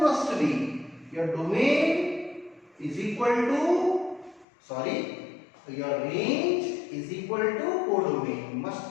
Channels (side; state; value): right; drops out; at 4.5 s